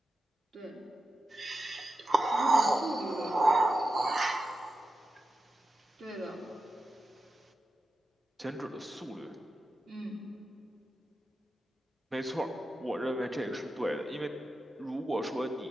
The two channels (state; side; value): normal; both; correlation 0.90